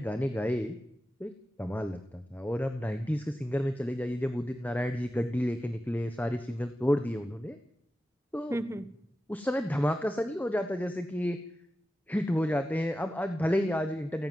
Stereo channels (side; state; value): both; normal; correlation 0.93